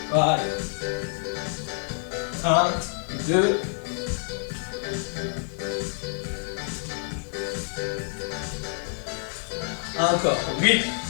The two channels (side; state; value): right; silent; digital silence